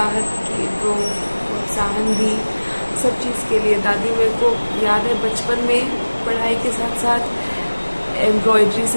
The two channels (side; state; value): both; inverted; correlation -1.00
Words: दी सब चीज़ के लिए। दादी मेरे को याद है बचपन में पढ़ाई के साथ साथ एम्ब्रॉयडरी